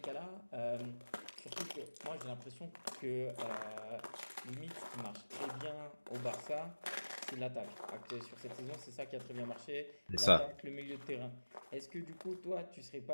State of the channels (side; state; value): both; inverted; correlation -1.00